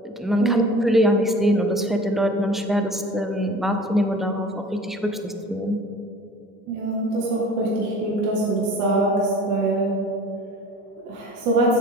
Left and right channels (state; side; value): normal; both; correlation 0.43